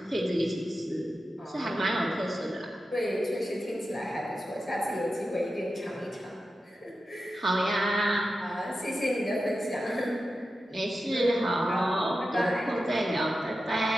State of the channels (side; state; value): both; normal; correlation 0.92